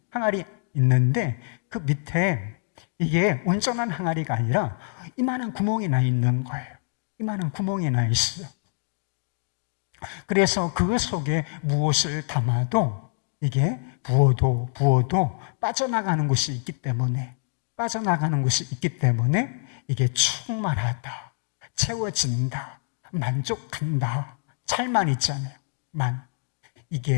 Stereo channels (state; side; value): silent; right; digital silence